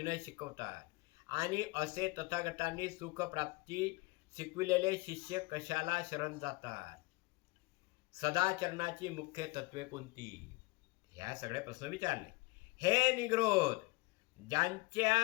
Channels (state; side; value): quieter; right; 24.0 dB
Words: शिकवतात आणि असे तथागतांनी सुख प्राप्ती शिकविलेले शिष्य कशाला शरण जातात. सदाचरणाची मुख्य तत्वे कोणती, ह्या सगळे प्रश्न विचारले. हे निग्रोध,